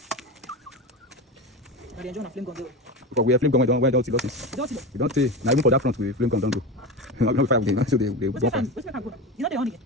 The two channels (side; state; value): both; normal; correlation 0.23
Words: Now they enjoy a flame gun though. Because we have flame gun, why don't see losses? We don't say. Now even for that front, we flame gun don't go. Not fire with them, so they What's my can go? You know they on again?